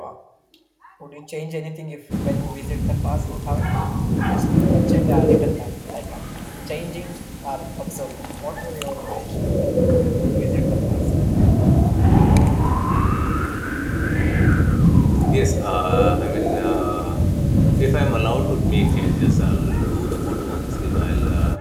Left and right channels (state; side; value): identical; both; correlation 1.00